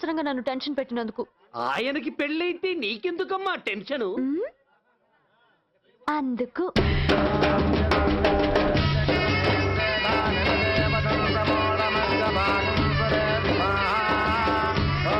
నన్ను టెన్షన్ పెట్టినందుకు. ఆయనకి పెళ్ళైతే నీకెందుకమ్మా టెన్షను? అందుకు.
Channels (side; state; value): both; identical; correlation 1.00